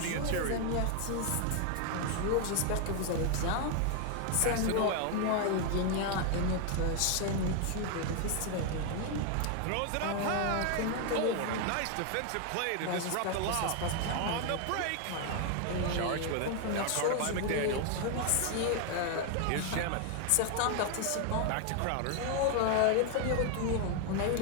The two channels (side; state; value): both; different; correlation 0.01